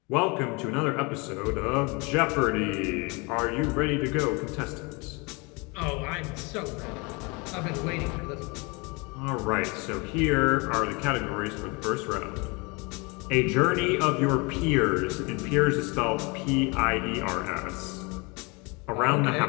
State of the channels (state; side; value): quieter; right; 28.6 dB